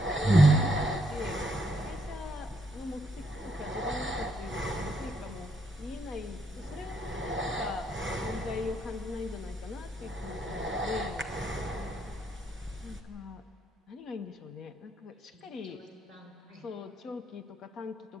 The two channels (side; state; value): both; normal; correlation 0.74